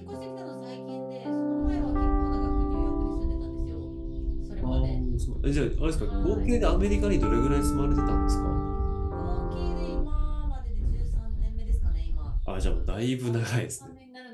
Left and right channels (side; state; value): both; identical; correlation 1.00